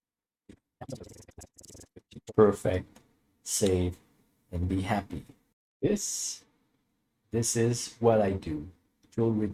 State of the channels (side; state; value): both; identical; correlation 1.00